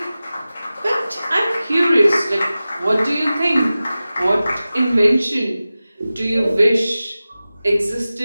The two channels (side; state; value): both; inverted; correlation -0.96